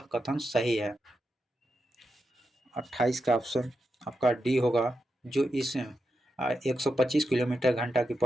कथन सही है? 28 का ऑप्शन आपका डी होगा जो इस 125 किलोमीटर घंटा की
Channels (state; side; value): normal; both; correlation 0.87